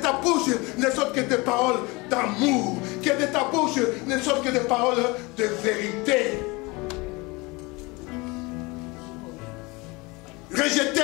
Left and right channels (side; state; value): right; quieter; 25.1 dB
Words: ta bouche ne sortent que des paroles d'amour. Que de ta bouche ne sortent que des paroles de vérité.